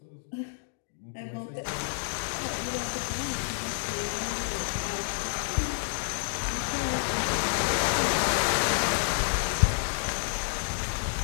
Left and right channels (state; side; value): silent; right; 58 dB below the other